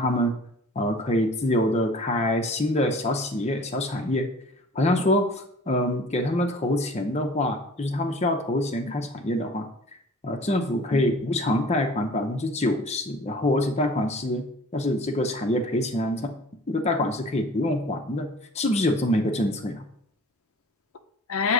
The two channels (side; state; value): both; normal; correlation 0.47